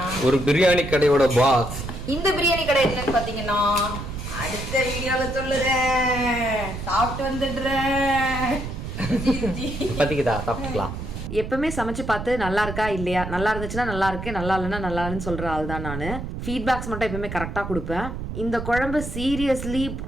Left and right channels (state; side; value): noise; right; rumble, 7 dB below the sound